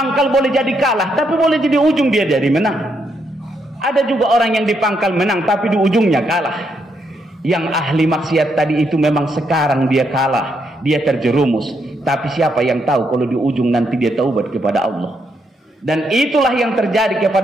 boleh jadi kalah, tapi boleh jadi ujung dia jadi menang. Ada juga orang yang di pangkal menang tapi di ujungnya kalah. Yang ahli maksiat tadi itu memang sekarang dia kalah, dia terjerumus, tapi siapa yang tahu kalau di ujung nanti dia taubat kepada Allah. Dan itulah yang terjadi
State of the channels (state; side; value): normal; both; correlation 0.77